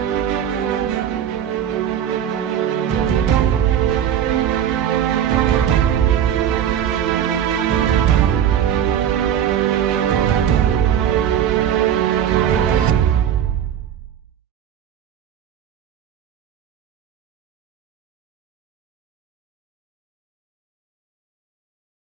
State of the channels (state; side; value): quieter; left; 9.6 dB